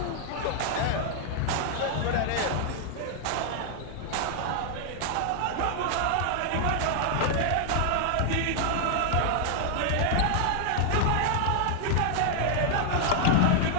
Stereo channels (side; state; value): both; different; correlation 0.00